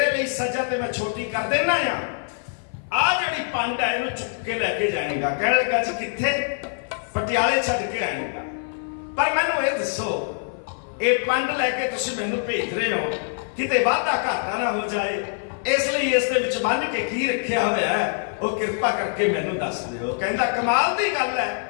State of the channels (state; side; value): silent; right; 56 dB below the other